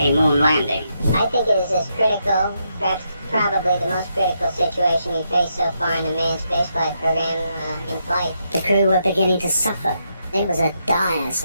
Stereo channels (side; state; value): both; inverted; correlation -0.80